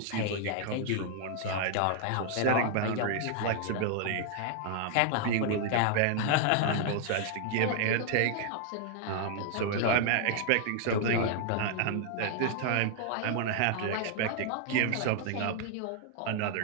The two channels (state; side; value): different; both; correlation 0.00